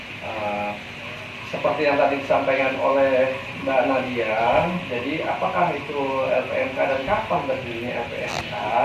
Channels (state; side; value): identical; both; correlation 1.00